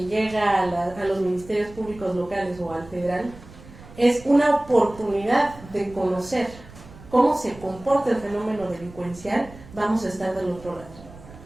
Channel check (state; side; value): noise; right; rumble, 19 dB below the sound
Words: llega a los ministerios públicos locales o al federal es una oportunidad de conocer cómo se comporta el fenómeno delincuencial, vamos a estar del otro lado.